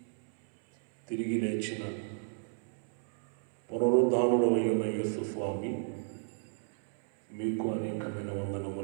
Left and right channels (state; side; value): silent; left; 56 dB below the other